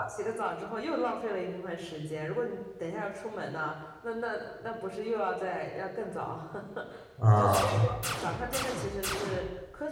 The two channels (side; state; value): both; identical; correlation 1.00